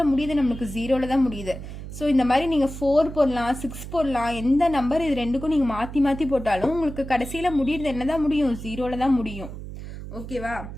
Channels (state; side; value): noise; right; hum, 10 dB below the sound